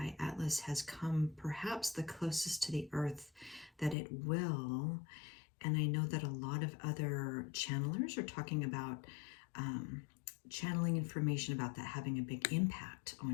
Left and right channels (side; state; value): right; drops out; at 4.0 s